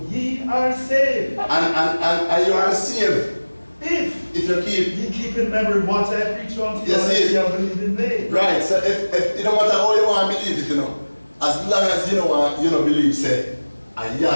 ye are saved. And you are saved. If you keep. ye keep in memory what I preach unto you, Yes, and ye have believed in me. Right, so if it don't matter how you want to believe it, you know, as long as you don't believe, say, and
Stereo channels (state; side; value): inverted; both; correlation -1.00